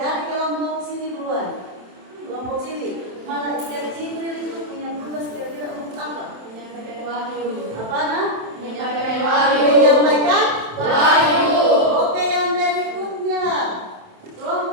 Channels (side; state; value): left; late; 27 ms